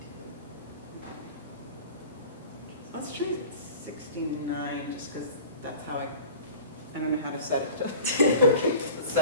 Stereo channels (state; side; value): inverted; both; correlation -0.42